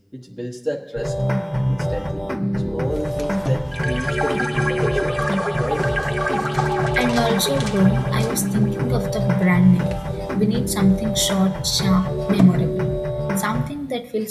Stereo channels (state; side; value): identical; both; correlation 1.00